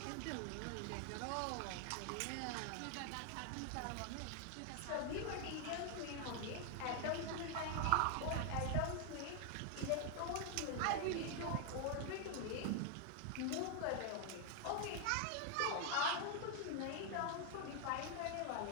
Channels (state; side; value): different; both; correlation 0.00